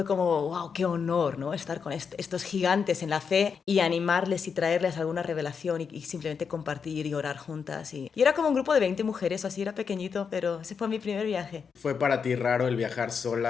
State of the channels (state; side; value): quieter; right; 6.2 dB